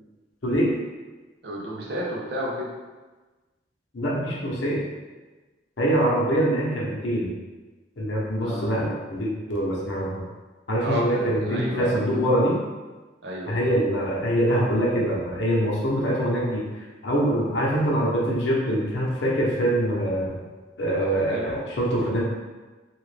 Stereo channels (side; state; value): both; normal; correlation 0.49